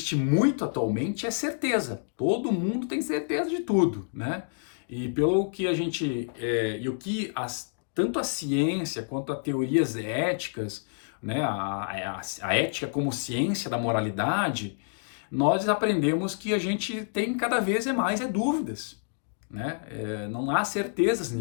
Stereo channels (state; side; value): silent; right; digital silence